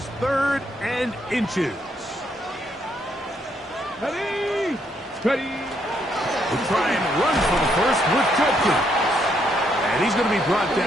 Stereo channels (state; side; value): normal; both; correlation 0.73